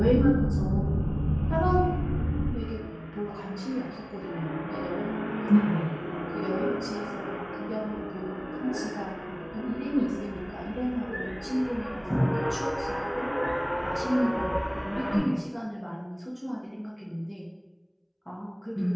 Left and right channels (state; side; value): identical; both; correlation 1.00